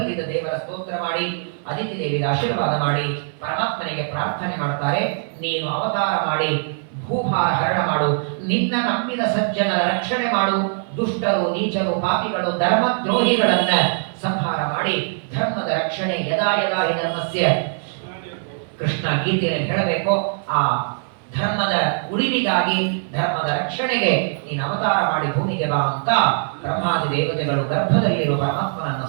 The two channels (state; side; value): silent; left; 62 dB below the other